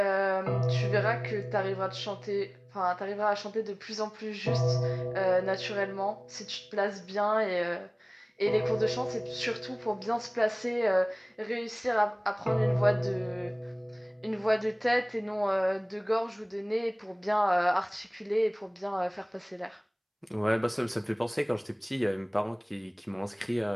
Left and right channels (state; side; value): identical; both; correlation 1.00